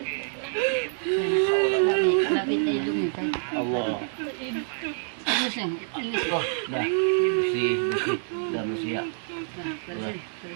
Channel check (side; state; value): left; silent; digital silence